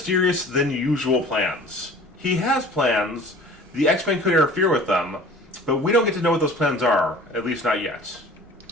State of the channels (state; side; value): normal; both; correlation 0.45